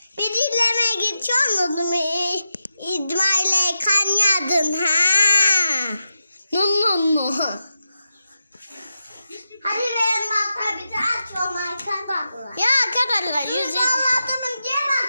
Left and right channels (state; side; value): inverted; both; correlation -0.89